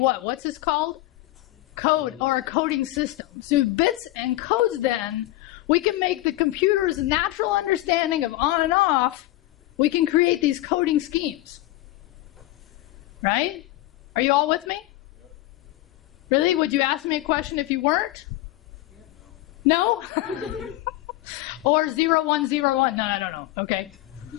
What's this called? Code, or a coding system. So bits and codes then, we can make the computer's natural understanding of on and off, we can create these coding schemes. Right? Are you all with me? Really? Would you ask me a question if you weren't? No? Or 0101? No, I don't know. Okay.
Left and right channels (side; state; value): right; quieter; 17.0 dB